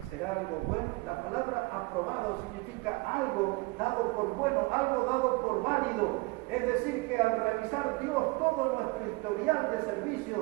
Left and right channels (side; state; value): left; quieter; 25.3 dB